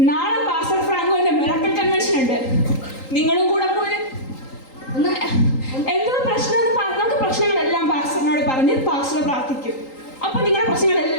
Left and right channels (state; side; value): late; right; 3.8 ms